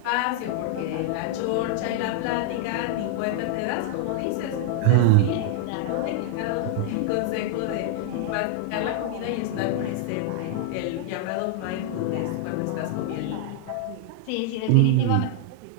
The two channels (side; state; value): both; different; correlation 0.00